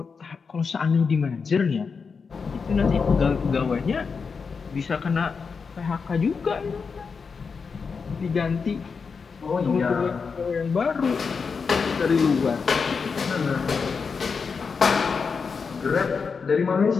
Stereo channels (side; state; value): right; quieter; 5.3 dB